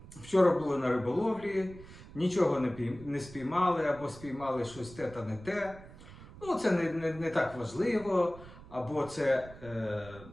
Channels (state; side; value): noise; right; rumble, 18 dB below the sound